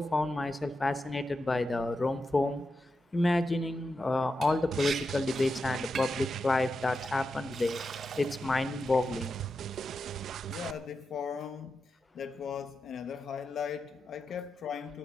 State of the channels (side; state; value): both; normal; correlation 0.88